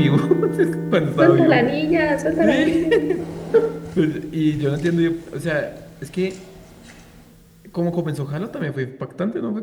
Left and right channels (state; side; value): identical; both; correlation 1.00